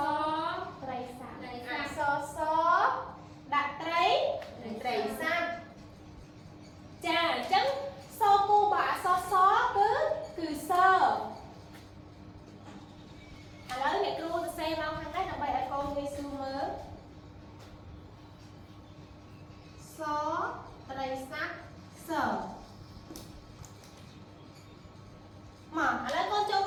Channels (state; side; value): identical; both; correlation 1.00